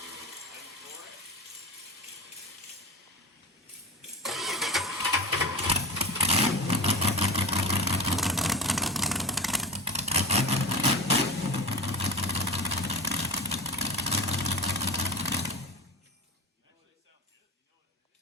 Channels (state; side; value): normal; both; correlation 0.26